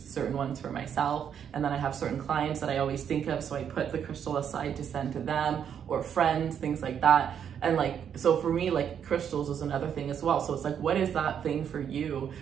ones for myself, and then I have certain clients that I always think of, so I put the crystal aside to send to them, or friends, things like that. And like, so for me, like crystals is another thing as well. So it's like, what is that thing for you,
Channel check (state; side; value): quieter; left; 8.4 dB